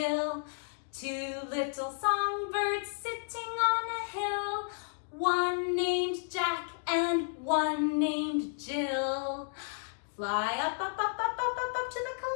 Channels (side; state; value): right; silent; digital silence